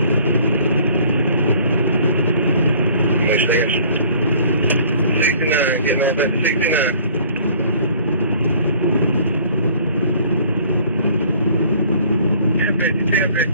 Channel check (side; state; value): both; inverted; correlation -0.54